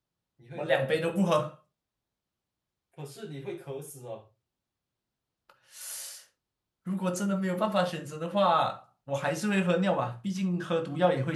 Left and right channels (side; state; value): both; identical; correlation 1.00